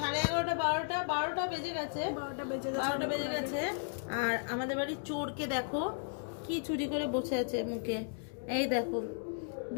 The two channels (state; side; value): silent; right; digital silence